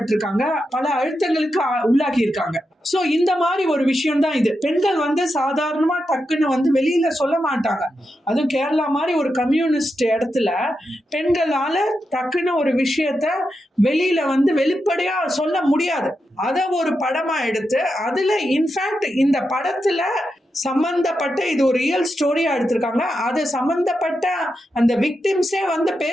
பல அழுத்தங்களுக்கு உள்ளாகி இருக்காங்க. சோ இந்த மாதிரி ஒரு விஷயம் தான் இது. பெண்கள் சாதாரணமா டக்குன்னு வெளியில சொல்ல மாட்டாங்க. அதுவும் கேரளா மாதிரி ஒரு கம்யூனிஸ்ட் இடத்துல பெண்களால டக்குன்னு ஒரு விஷயத்த வெளியில வெளிப்படையா சொல்ல முடியாது. அத ஒரு படமா எடுத்து அதுல இன்ஃபேக்ட் இந்த படத்துல சம்பந்தப்பட்ட இது ஒரு ரியல் ஸ்டோரியா எடுத்திருக்காங்க. அது சம்பந்தப்பட்ட அந்த விக்டிம்ஸே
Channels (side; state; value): both; normal; correlation 0.87